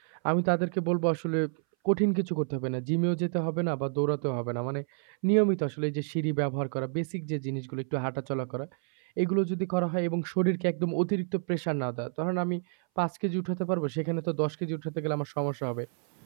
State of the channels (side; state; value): left; silent; 58 dB below the other